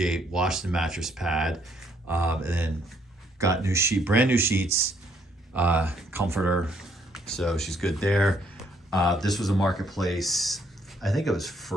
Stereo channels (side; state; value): both; normal; correlation 0.69